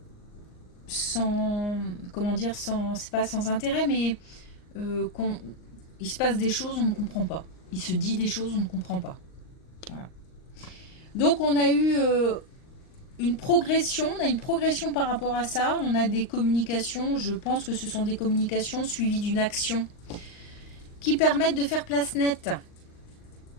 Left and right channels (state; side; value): late; right; 39 ms